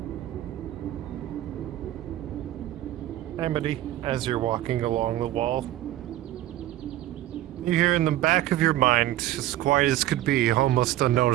Amity, as you're walking along the wall, you hear in the back of your mind, as quiet as could be, almost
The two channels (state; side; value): quieter; left; 14.2 dB